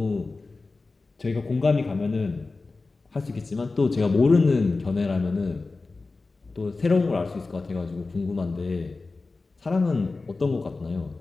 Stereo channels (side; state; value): right; quieter; 3.7 dB